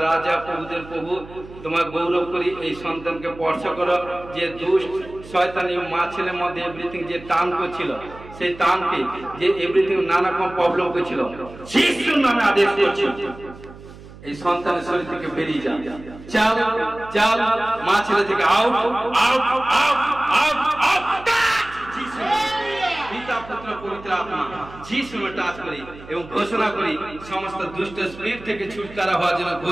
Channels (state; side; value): noise; right; hum, 18 dB below the sound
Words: রাজা প্রভুদের প্রভু, তোমার গৌরব করি। এই সন্তানকে স্পর্শ করো, যে দুষ্ট শয়তানি মা ছেলের মধ্যে এভরিথিং যে টান করছিল, সেই টানকে যে এভরিথিং নানা রকম প্রবলেম করছিল, যিশুর নামে আদেশ করছি এই সন্তানের শরীর থেকে বেরিয়ে যাও। চাল চাল মা ছেলে থেকে out out out out out. পিতা পুত্র পবিত্র আত্মা যিশু নামে টাচ করি এবং ঘোষণা করি সমস্ত দুষ্ট স্পিরিট থেকে ছুটকারা হওয়ার জন্য